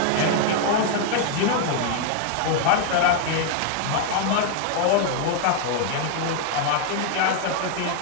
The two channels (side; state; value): both; different; correlation 0.00